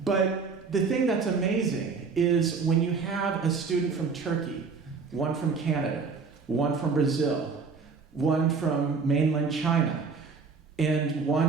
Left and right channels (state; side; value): quieter; left; 5.0 dB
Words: But the thing that's amazing is when you have a student from Turkey, one from Canada, one from Brazil, one from mainland China, and